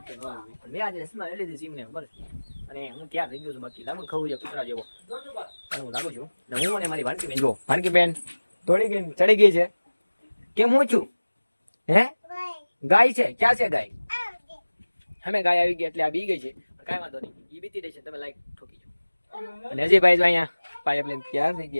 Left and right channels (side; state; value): both; inverted; correlation -1.00